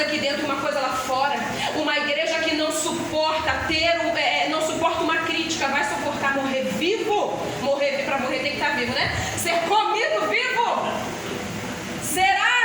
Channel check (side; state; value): both; identical; correlation 1.00